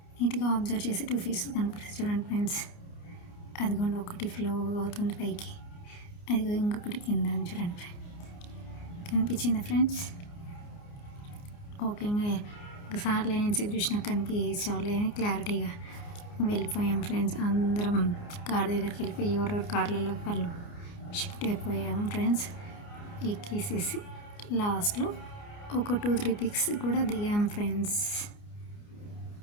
నీట్గా అబ్జర్వ్ చేసి 2 ఫిషెస్ కనిపిస్తాయి చూడండి ఫ్రెండ్స్. అదిగోండి ఒకటి ఫ్లో అవుతుంది పైకి, అదిగో ఇంకొకటి కింద చూడండి ఫ్రెండ్స్. కనిపించిందా ఫ్రెండ్స్? ఓకే, సార్లు ఏం చూసినా కనిపించలే అని క్లారిటీగా వెళ్ళిపోయాం ఫ్రెండ్స్. అందరం కార్ దగ్గరికి వెళ్ళిపోయి ఎవరెవరు కార్లలో వాళ్ళు షిఫ్ట్ అయిపోయాం ఫ్రెండ్స్. ఎక్కేసేసి లాస్ట్లో ఒక 2-3 పిక్స్ కూడా దిగాం ఫ్రెండ్స్.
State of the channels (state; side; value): late; right; 29 ms